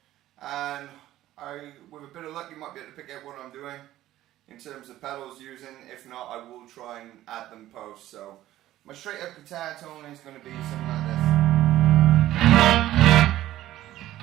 and with a bit of luck, you might be able to pick out what I'm doing in terms of pedals using. If not, I will try and add them post. So my straight up guitar tone is gonna be something like this.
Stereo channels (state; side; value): quieter; left; 14.3 dB